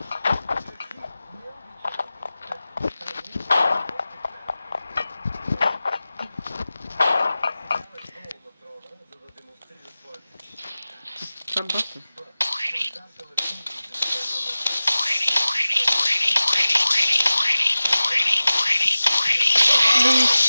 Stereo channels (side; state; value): both; inverted; correlation -0.96